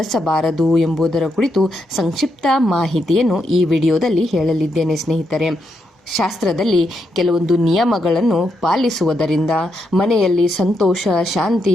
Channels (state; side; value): normal; both; correlation 0.81